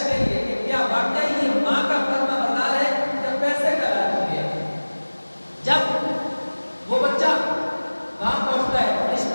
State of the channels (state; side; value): inverted; both; correlation -1.00